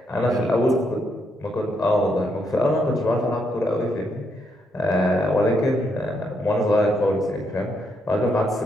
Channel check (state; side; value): normal; both; correlation 0.77